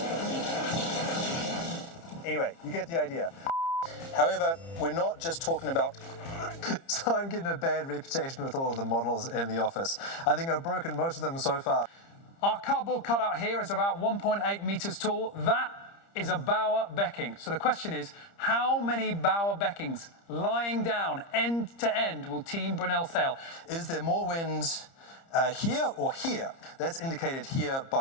Anyway, you get the idea. However, we're not just talking about... So I'm getting a bad reputation with all of the models in the office. I think I've broken most of them so far. Our cardboard cutout here is about 1.8 meters tall. That is a bower becking. So the question is, how many bower beckings lying down end to end will Team Brunel sail? Is there more wind here or here. That's indicated here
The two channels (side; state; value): right; late; 30 ms